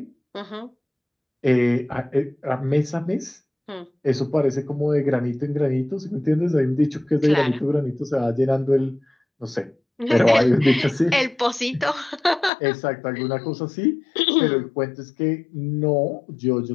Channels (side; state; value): right; drops out; at 12.5 s